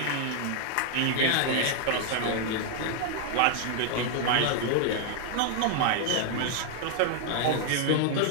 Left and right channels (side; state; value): both; different; correlation 0.00